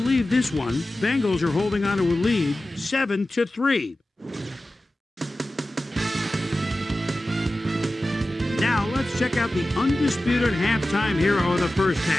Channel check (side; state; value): both; normal; correlation 0.95